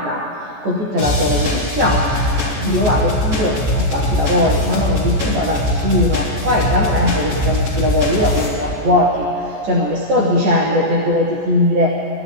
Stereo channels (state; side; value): late; left; 14 ms